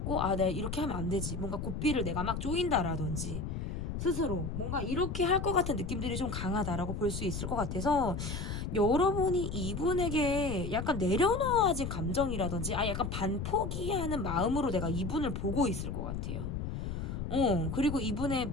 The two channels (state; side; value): noise; left; rumble, 4 dB below the sound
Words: 내가 이렇게 하면 안 되지. 뭔가 고삐를 내가 막 조인다라든지 스스로 뭔가 이렇게 할 것 같은 느낌들이 좀 강하다라고 볼 수 있을 것 같아서 여러분이 이분에게 약간 내려놓아진 감정이라든지 약간 반포기하는 마음으로 내가 이분을 보고 있을 것 같아요. 그리고